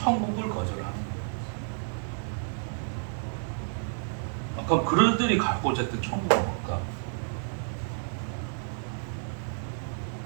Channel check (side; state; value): left; silent; digital silence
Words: 거절하는 거예요. 그럼 그들이 갖고자 했던 천국은 뭘까?